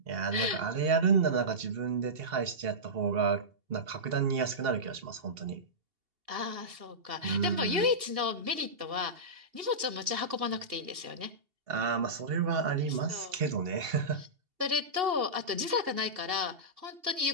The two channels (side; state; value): left; late; 2.7 ms